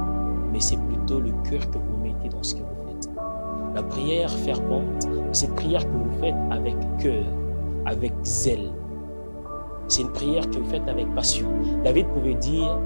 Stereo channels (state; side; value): inverted; both; correlation -1.00